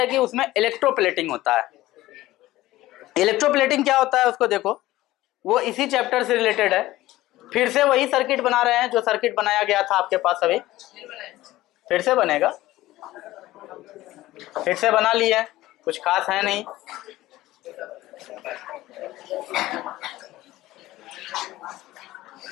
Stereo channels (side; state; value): right; quieter; 16.6 dB